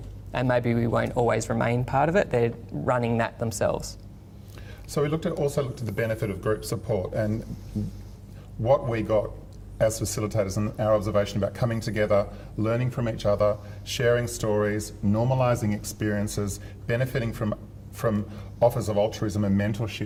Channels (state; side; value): identical; both; correlation 1.00